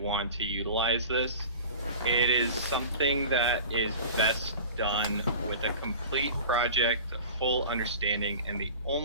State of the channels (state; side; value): inverted; both; correlation -0.37